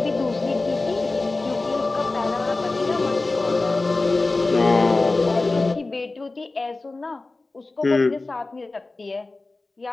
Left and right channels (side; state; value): right; quieter; 3.3 dB